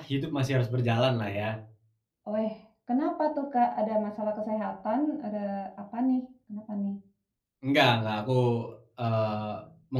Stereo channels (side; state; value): both; identical; correlation 1.00